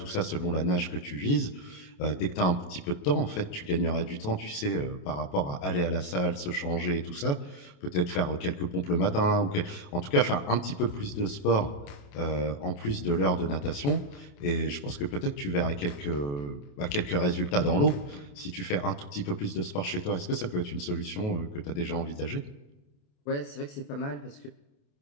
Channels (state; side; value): late; right; 28 ms